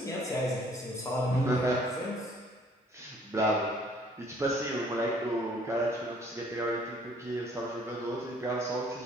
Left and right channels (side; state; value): both; normal; correlation 0.59